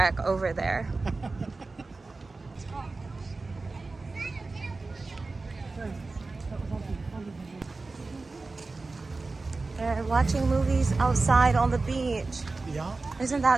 over there. And watching movies outside on the beach. Yeah, Isn't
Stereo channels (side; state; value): left; quieter; 3.6 dB